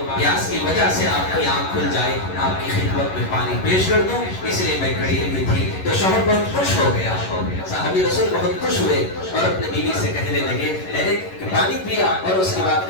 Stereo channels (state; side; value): late; right; 11 ms